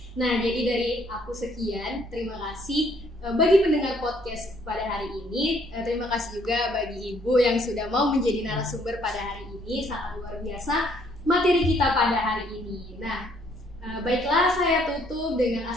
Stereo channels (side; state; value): both; normal; correlation 0.65